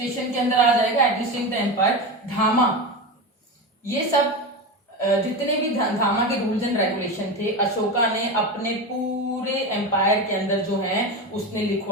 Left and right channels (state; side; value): normal; both; correlation 0.21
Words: के अंदर आ जाएगा, एडमिनिस्ट्रेटिंग द एम्पायर। धामा, ये सब जितने भी धामा के रूल्स एंड रेगुलेशन थे अशोका ने अपने पूरे एम्पायर के अंदर जो है उसने